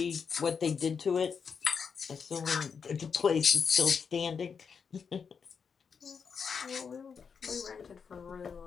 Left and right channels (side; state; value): right; quieter; 6.2 dB